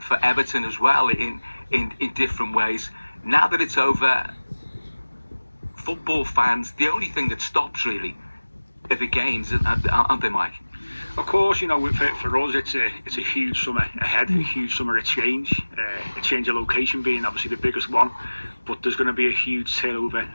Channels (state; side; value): inverted; both; correlation -1.00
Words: Everton as well in different ways. Now that it's over, football fans, the only thing that stops really are the games, aren't they, Mike? Of course, you know, for us, it's a huge summer ahead, a huge summer of change. A change of location being obviously the biggest one, but there's going to be a huge turnover